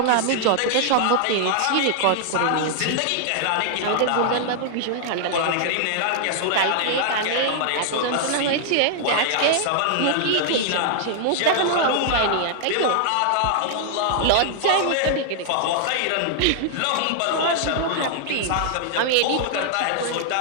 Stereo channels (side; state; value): both; different; correlation -0.01